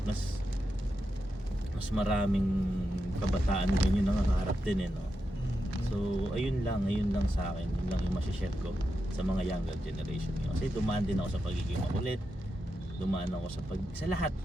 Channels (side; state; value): both; normal; correlation 0.87